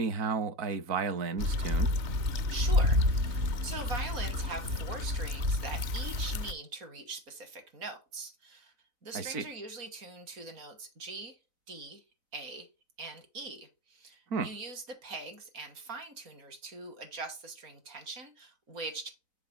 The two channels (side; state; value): left; late; 4.0 ms